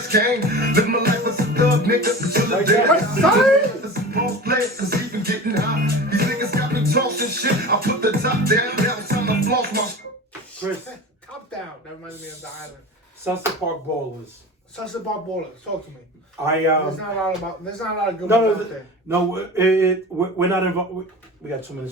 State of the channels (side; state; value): both; normal; correlation 0.33